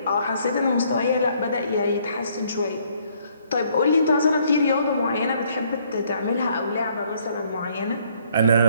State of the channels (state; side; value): inverted; both; correlation -0.65